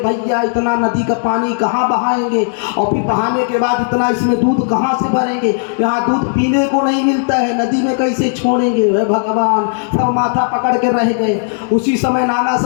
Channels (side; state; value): right; silent; digital silence